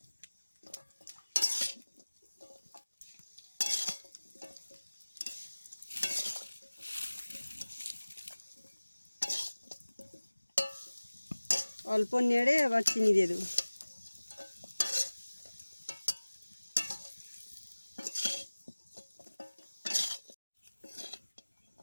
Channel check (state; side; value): inverted; both; correlation -1.00